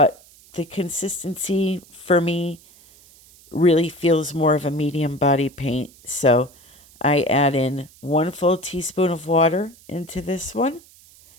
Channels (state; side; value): noise; right; hiss, 26 dB below the sound